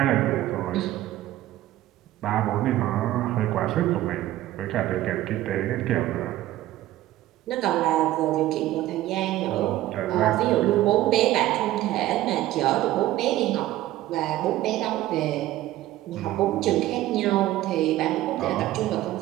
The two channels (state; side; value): quieter; left; 14.9 dB